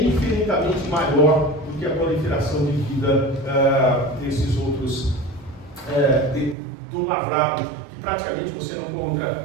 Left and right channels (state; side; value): drops out; left; at 6.6 s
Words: infinitamente maior do que a proliferação de vida desses outros, do lavrado, que praticamente você